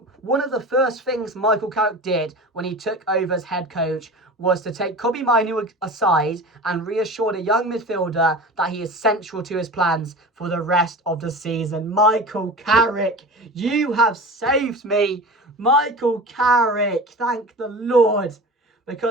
of the first things Michael Carrick did when he took over as head coach was to take Kobbie Mainoo aside and reassure the young midfielder that he is central to his plans for the rest of the season. Michael Carrick, you have saved me. Michael Carrick, thank the Lord.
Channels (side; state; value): both; normal; correlation 0.34